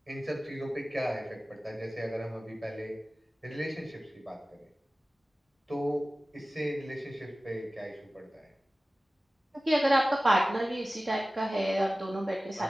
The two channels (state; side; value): normal; both; correlation 0.97